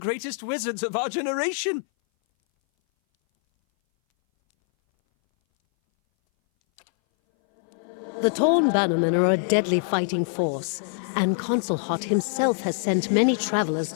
wizards of our generation! The Torn Bannermen are a deadly fighting force, and Consul Hot himself has sent many travelers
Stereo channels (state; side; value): silent; right; 59 dB below the other